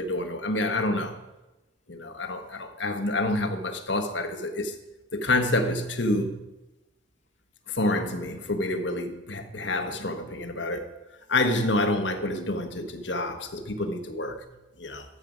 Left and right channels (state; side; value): normal; both; correlation 0.30